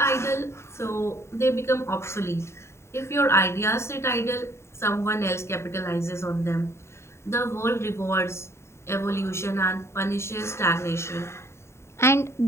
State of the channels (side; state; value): right; late; 0.13 ms